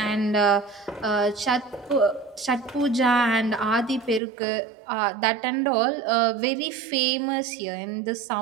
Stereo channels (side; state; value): left; drops out; at 4.2 s